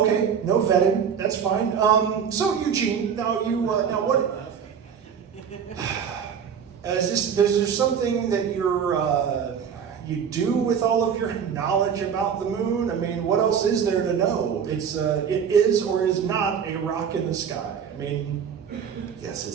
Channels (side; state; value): left; quieter; 7.4 dB